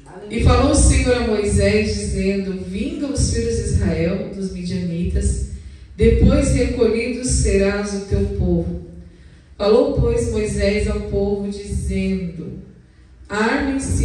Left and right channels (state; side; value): identical; both; correlation 1.00